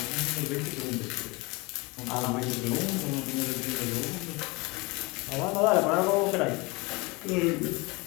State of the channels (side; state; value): right; quieter; 25.5 dB